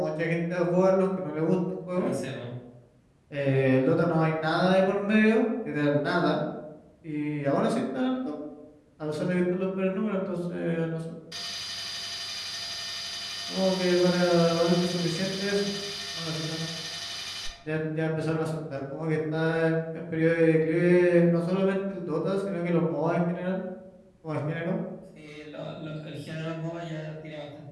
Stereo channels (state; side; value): identical; both; correlation 1.00